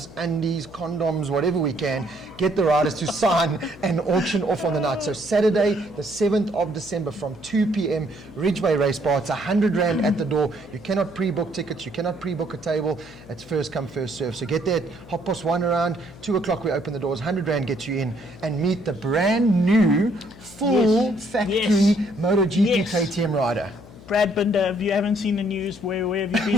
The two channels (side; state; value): left; noise; hum, 20 dB below the sound